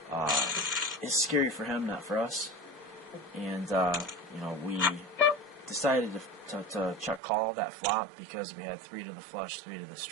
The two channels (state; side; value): drops out; left; at 7.2 s